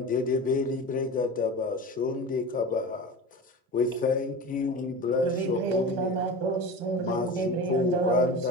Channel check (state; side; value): normal; both; correlation 0.31